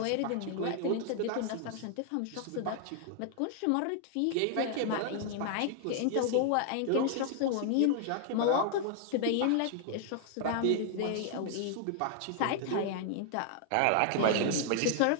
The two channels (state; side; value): different; both; correlation 0.00